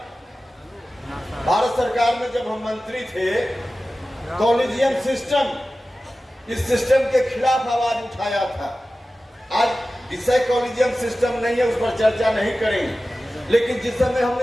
भारत सरकार में, जब हम मंत्री थे, कॉलेजियम सिस्टम, इस सिस्टम के खिलाफ आवाज उठाया था। आज विषय कॉलेजियम सिस्टम नहीं है, उस पर चर्चा नहीं करेंगे, लेकिन जिस समय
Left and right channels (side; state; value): both; normal; correlation 0.95